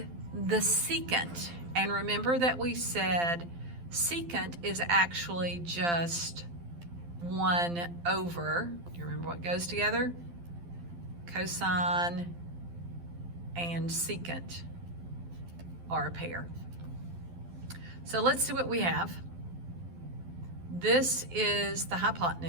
the secant. And remember that we said secant is actually just 1 over, do you remember what goes together? Cosine and secant are a pair. So let's see what we have. This is the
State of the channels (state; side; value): late; left; 12 ms